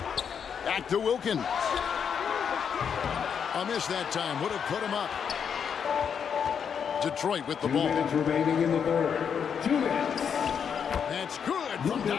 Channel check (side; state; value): right; quieter; 7.3 dB